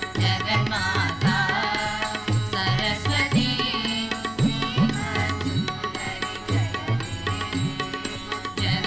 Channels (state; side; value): noise; left; hum, 24 dB below the sound